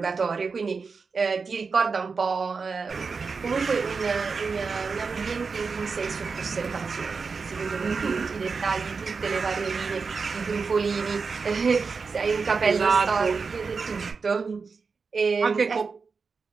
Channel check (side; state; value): left; quieter; 4.9 dB